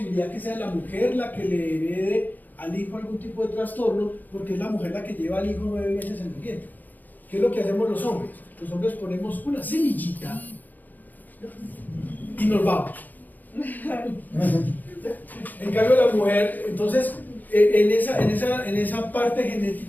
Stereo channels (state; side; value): late; right; 0.084 ms